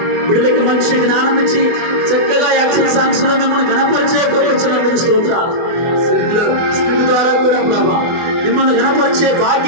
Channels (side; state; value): left; late; 24 ms